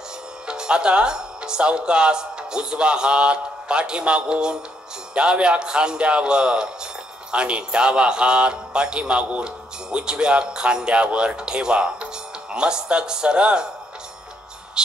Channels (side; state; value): both; normal; correlation 0.74